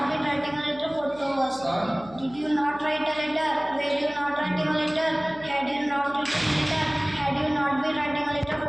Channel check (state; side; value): noise; left; hum, 21 dB below the sound